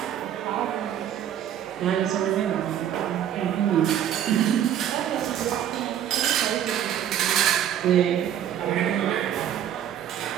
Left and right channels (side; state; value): left; quieter; 10.3 dB